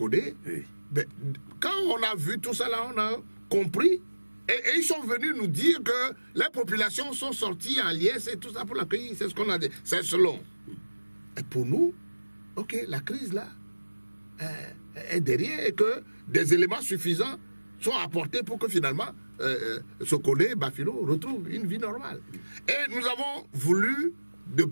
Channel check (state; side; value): inverted; both; correlation -1.00